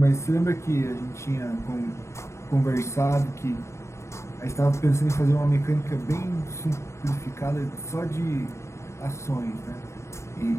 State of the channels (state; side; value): late; right; 0.14 ms